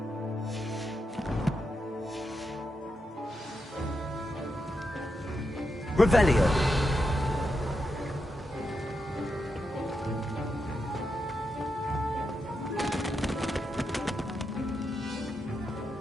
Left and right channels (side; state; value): both; normal; correlation 0.85